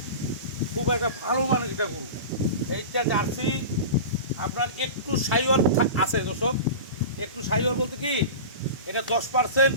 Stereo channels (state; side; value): inverted; both; correlation -0.30